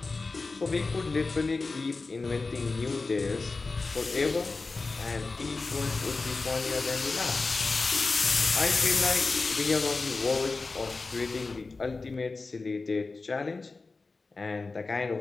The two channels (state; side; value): quieter; right; 3.8 dB